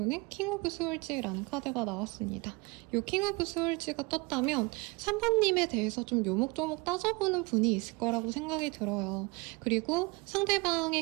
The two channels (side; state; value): left; quieter; 26.3 dB